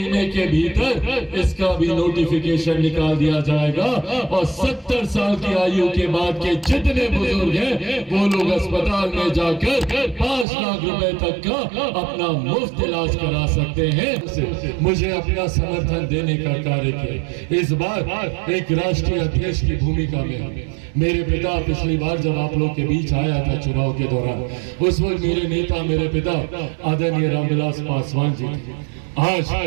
के भीतर इसका भी नोटिफिकेशन निकाल दिया जाएगा और 70 साल की आयु के बाद के जितने बुजुर्ग हैं वो लोग अस्पताल में जाकर 5 लाख रुपए तक का अपना मुफ्त इलाज करा सकते हैं। मुझे अपना समर्थन देने का कार्य किया। इस बार एक राष्ट्रीय अध्यक्ष की भूमिका में मेरे पिता पिछली बार जब आप लोग के बीच आया था चुनाव के दौरान, उस वक्त मेरे नेता, मेरे पिता आदरणीय रामविलास पासवान जी थे।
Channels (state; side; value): drops out; left; at 10.5 s